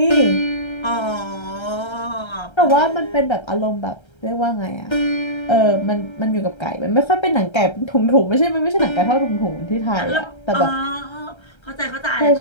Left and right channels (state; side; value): late; right; 1.3 ms